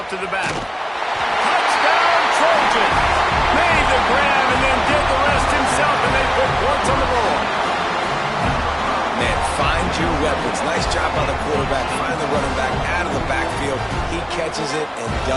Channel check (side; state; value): both; identical; correlation 1.00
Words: to the back. Touchdown, Trojans! Made the grab and then did the rest himself, and they put points on the board. Man, find your weapons. Nice job by the quarterback. Find the running back out of the backfield. He catches it and